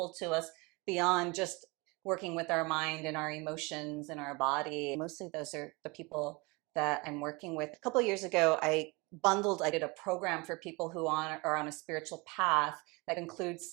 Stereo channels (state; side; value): quieter; left; 26.5 dB